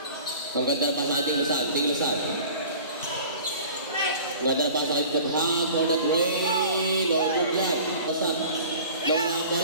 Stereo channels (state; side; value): inverted; both; correlation -0.44